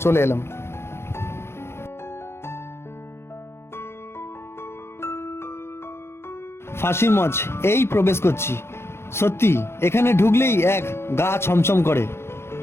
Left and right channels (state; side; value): late; right; 0.12 ms